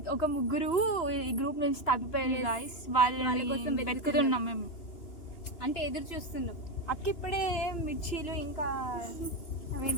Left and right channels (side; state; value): right; late; 2.8 ms